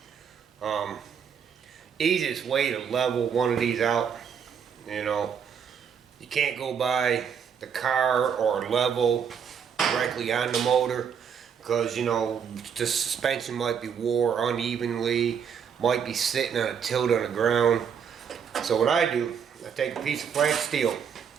Easiest way to level one of these out, you know, you can't go by the car or level directly on the motor, because, you know, the suspension might be wore unevenly, might be sitting on a tilt on the ground. So what I do, I take a piece of flat steel,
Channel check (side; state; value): left; quieter; 7.3 dB